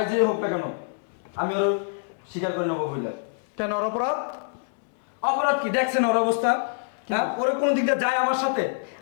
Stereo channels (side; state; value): right; silent; digital silence